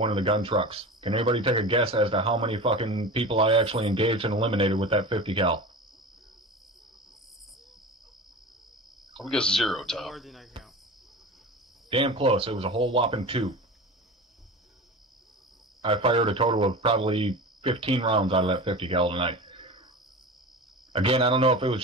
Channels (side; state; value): both; normal; correlation 0.31